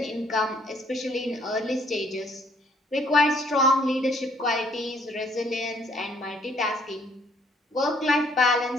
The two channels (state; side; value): normal; both; correlation 0.64